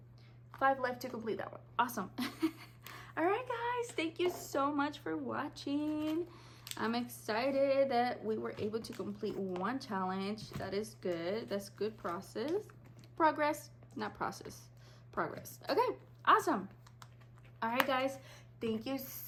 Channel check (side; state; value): both; identical; correlation 1.00